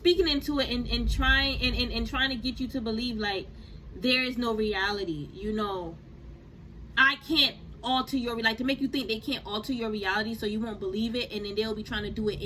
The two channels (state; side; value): identical; both; correlation 1.00